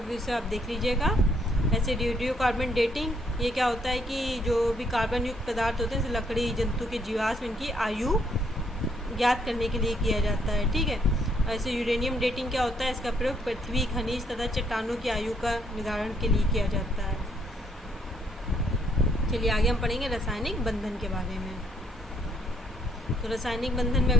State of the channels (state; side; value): normal; both; correlation 0.70